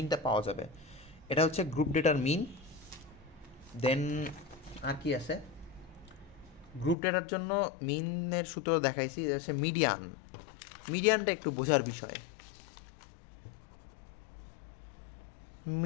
পাওয়া যাবে। এটা হচ্ছে গ্রুপ ডেটার মিন। দেন আর কি আছে, গ্রুপ ডেটার জন্য মিনের সূত্র দেখাইছি, এটা হচ্ছে মিডিয়ান। মিডিয়ানটা একটু বোঝার বিষয়।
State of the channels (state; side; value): drops out; right; at 7.0 s